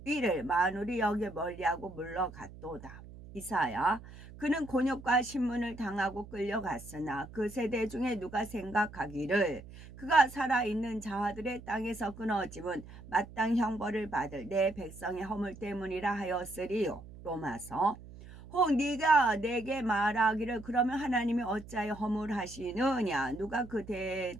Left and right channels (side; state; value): right; noise; hum, 16 dB below the sound